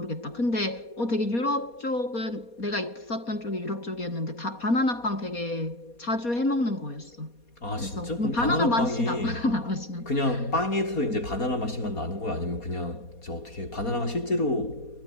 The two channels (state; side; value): late; right; 4.2 ms